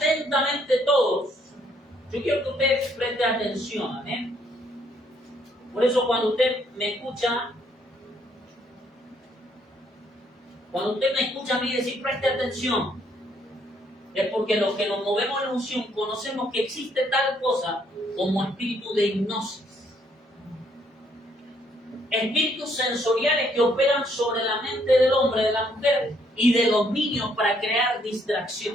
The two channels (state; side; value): normal; both; correlation 0.69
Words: todos. Yo quiero que usted preste atención, Por eso cuando usted me escucha, a mí decir preste atención, es porque los que nos movemos en unción conocemos que existe tal cosa como espíritu de hipnosis. Espíritus sensoriales que operan sobre la mente del hombre, de la mujer y de los niños para crear